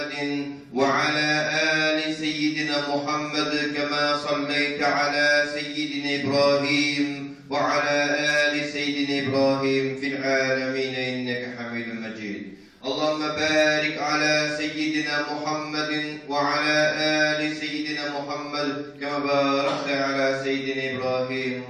وعلى آل سيدنا محمد كما صليت على سيدنا إبراهيم وعلى آل سيدنا إبراهيم في العالمين إنك حميد مجيد اللهم بارك على سيدنا محمد وعلى آل سيدنا محمد كما باركت على سيدنا إبراهيم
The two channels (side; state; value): both; identical; correlation 1.00